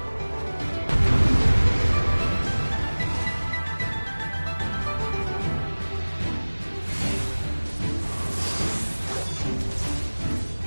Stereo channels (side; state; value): both; inverted; correlation -1.00